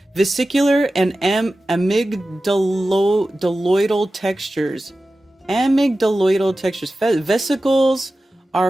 Vesicular and amygdaloidal textures. Amygdaloidal textures. Vesicles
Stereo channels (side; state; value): both; normal; correlation 0.95